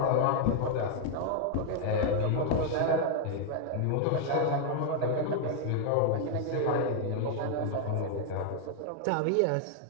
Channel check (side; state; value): both; different; correlation 0.00